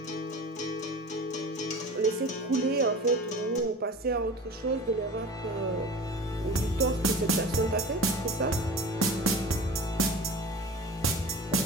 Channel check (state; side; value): normal; both; correlation 0.36